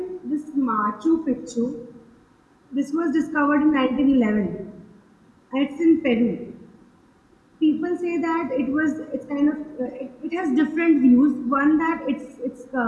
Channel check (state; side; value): identical; both; correlation 1.00